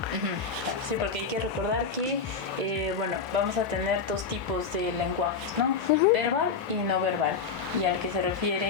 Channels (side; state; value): right; quieter; 5.4 dB